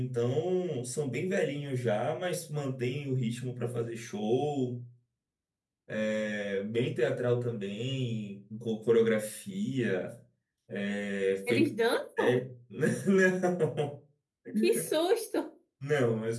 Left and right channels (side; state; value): both; identical; correlation 1.00